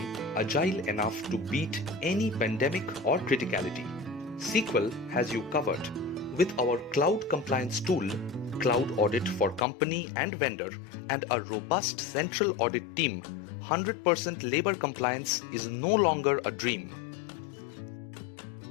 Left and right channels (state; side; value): drops out; right; at 9.7 s